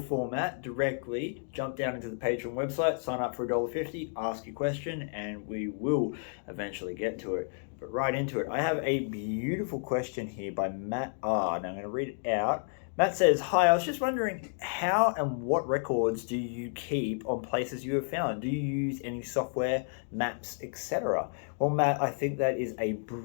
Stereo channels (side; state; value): right; silent; 57 dB below the other